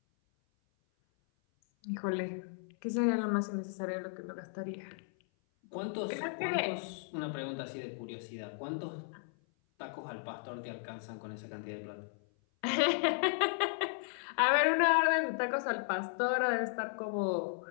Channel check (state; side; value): silent; right; 54 dB below the other